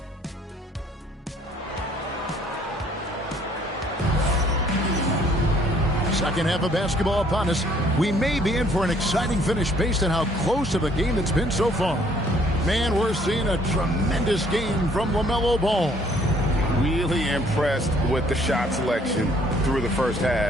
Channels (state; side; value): normal; both; correlation 0.62